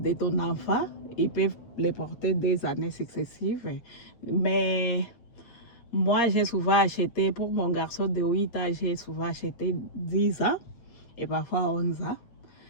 ton enfant, ils peuvent les porter des années successives. Mais moi, j'ai souvent acheté, pour mon garçon de 8 ans, j'ai souvent acheté 10 ans et parfois 11 ans.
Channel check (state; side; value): late; right; 8.2 ms